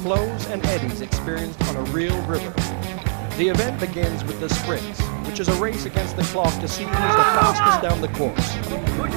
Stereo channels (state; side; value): silent; left; digital silence